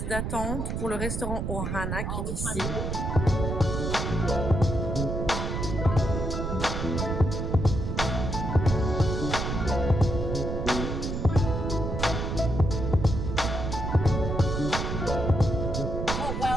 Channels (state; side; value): noise; right; rumble, 2 dB below the sound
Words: d'attente pour le restaurant Ohana qui est ici. Thank you.